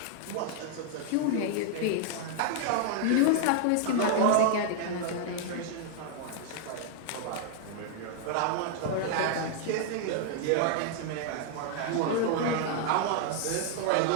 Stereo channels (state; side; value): different; both; correlation 0.00